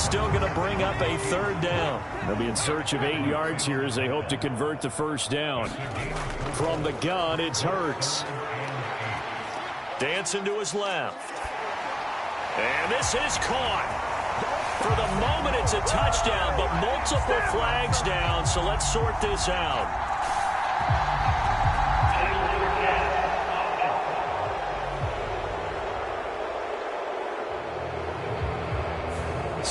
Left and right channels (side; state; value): both; identical; correlation 1.00